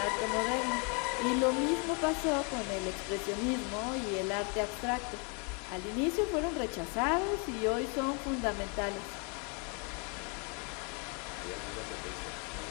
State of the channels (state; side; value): quieter; right; 35.1 dB